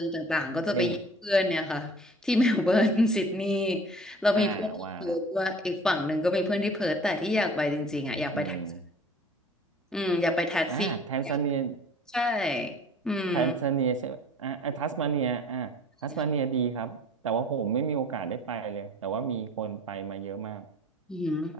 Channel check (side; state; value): both; normal; correlation 0.47